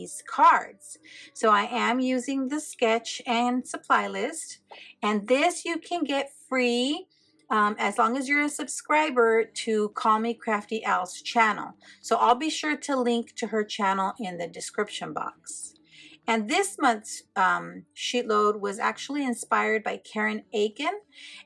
cards. So I am using the sketch and supply list, and this you can get free as long as you're a subscriber to Call Me Crafty Al's channel. So I'll be sure to link to her channel in the description box. And this month's sheet load was actually inspired by Karen Aiken,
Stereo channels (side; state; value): both; identical; correlation 1.00